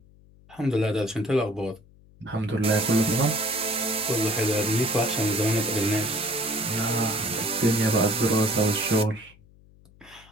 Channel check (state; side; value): noise; left; hum, 26 dB below the sound